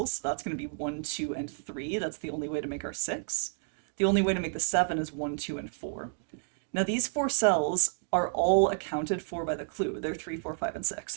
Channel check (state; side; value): silent; left; digital silence